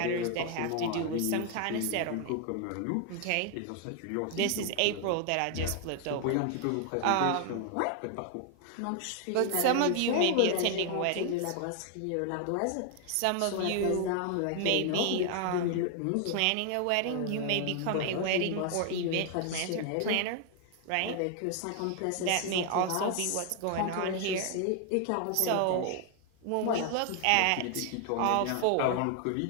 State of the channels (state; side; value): different; both; correlation 0.00